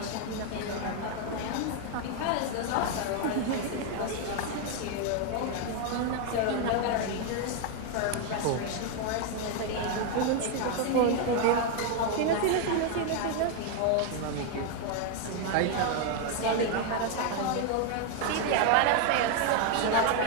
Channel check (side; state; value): both; different; correlation 0.01